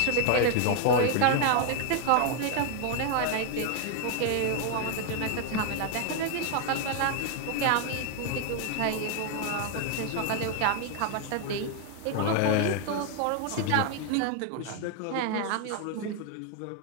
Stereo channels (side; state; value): both; different; correlation 0.00